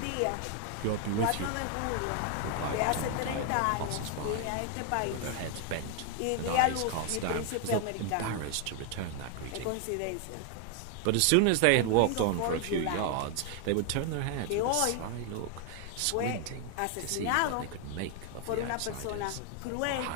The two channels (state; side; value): different; both; correlation 0.01